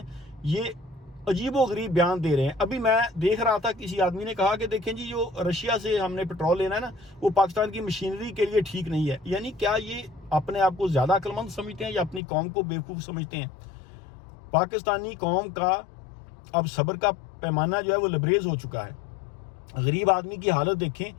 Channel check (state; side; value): drops out; right; at 12.2 s